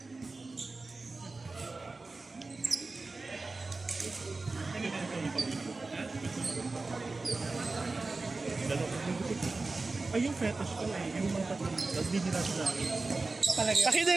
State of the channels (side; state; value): left; quieter; 3.6 dB